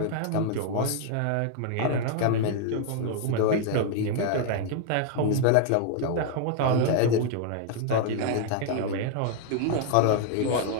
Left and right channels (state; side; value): different; both; correlation 0.00